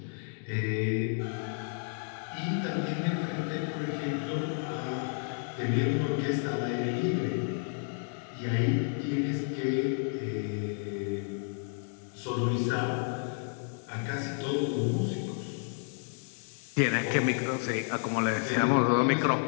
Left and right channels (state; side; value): silent; right; 57 dB below the other